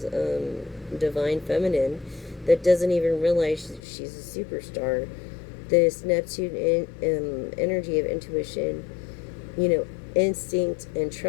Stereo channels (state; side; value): drops out; right; at 3.8 s